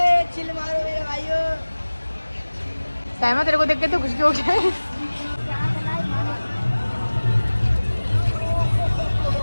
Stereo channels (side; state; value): both; inverted; correlation -1.00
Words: चिल मारो मेरे भाइयों। साइमा तेरे को देख के तो खुशी हो गया है।